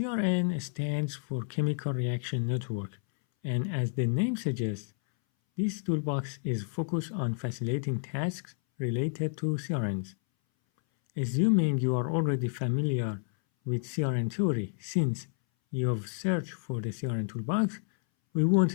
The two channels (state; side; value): silent; right; 58 dB below the other